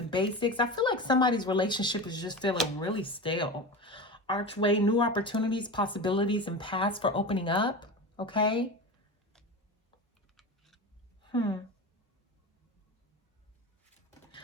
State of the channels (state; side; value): normal; both; correlation 0.27